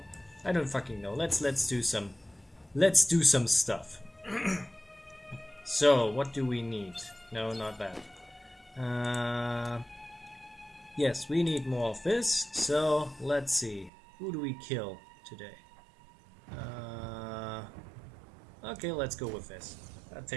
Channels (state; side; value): drops out; left; at 13.9 s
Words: Let's do some stuff. So, what do we need? No, not that. Yes, we need more of this. So, let's see. Who do we kill today? Okay, let's go with this. That